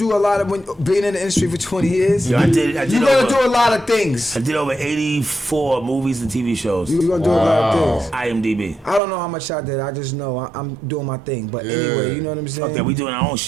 a lot of being in the industry for 20 years. Yo, I did You gotta do a lot of things. I did over 84 movies and TV shows. You gonna do a lot of things. IMDb. I don't know how much I did. I just know I'm doing my thing. But anyway, you know what I'm saying. Okay, we doing our own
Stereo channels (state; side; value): drops out; left; at 9.0 s